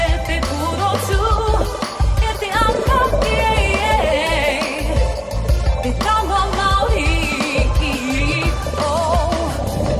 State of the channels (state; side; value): identical; both; correlation 1.00